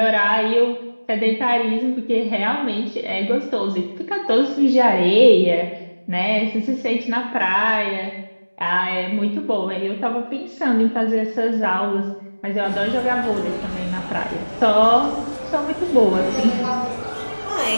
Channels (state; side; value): inverted; both; correlation -1.00